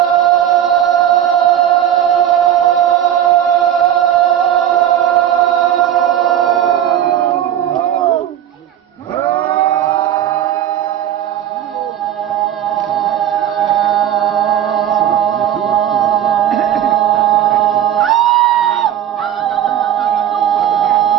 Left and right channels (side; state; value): left; quieter; 10.7 dB